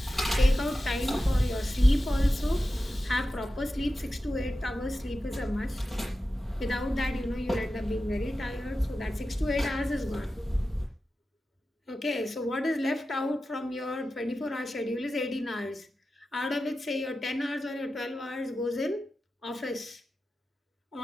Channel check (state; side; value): normal; both; correlation 0.93